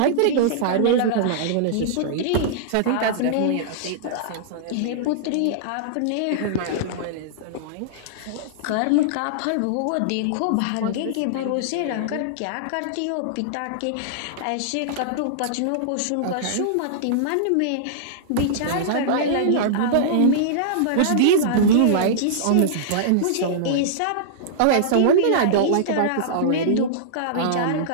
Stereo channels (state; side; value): different; both; correlation -0.02